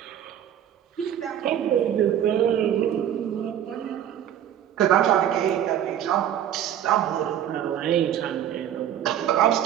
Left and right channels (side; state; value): left; quieter; 10.4 dB